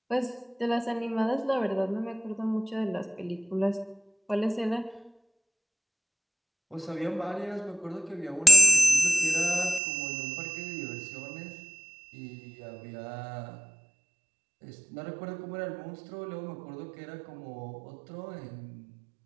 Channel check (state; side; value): drops out; left; at 9.8 s